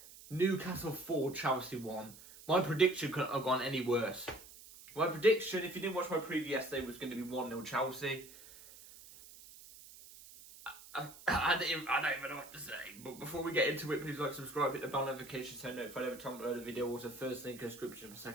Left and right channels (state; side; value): noise; right; hiss, 18 dB below the sound